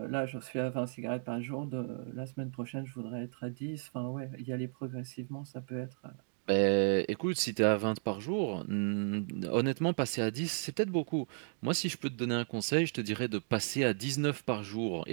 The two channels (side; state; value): left; silent; digital silence